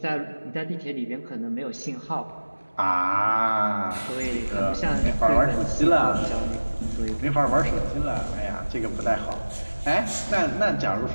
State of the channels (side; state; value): both; inverted; correlation -1.00